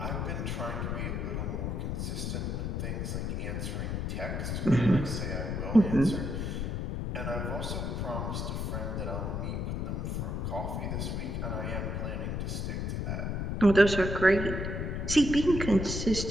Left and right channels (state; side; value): noise; left; rumble, 1 dB below the sound